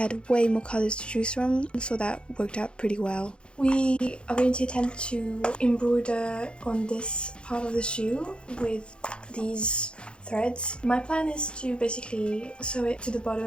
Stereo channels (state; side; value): late; right; 0.055 ms